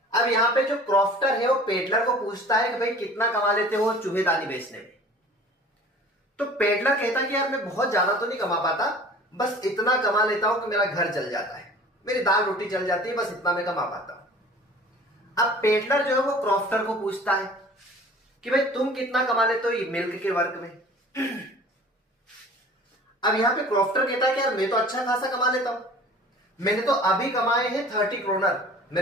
अब यहाँ पे जो क्रॉफ्टर है वो पेडलर को पूछता है कि भाई कितना कमा लेते हो चूहेदानी बेचने में। तो पेडलर कहता है कि यार मैं बहुत ज्यादा तो नहीं कमा पाता, बस इतना कमा लेता हूं कि मेरा घर चल जाता है, मेरी दाल रोटी चल जाती है, बस इतना मैं कमा पाता हूं। अब पेडलर जो है वो क्रॉफ्टर को पूछता है कि भाई तुम कितना कमा लेते हो ये मिल्क के वर्क में। अब यहां पे क्रॉफ्टर कहता है कि यार मैं तो अच्छा खासा कमा लेता हूं, मैंने तो अभी कमाए हैं 30 क्रोनर,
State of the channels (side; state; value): both; normal; correlation 0.45